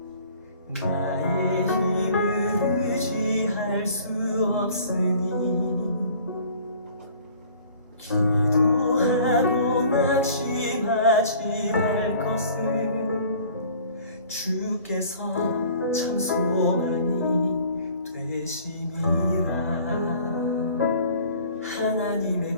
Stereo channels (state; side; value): inverted; both; correlation -0.51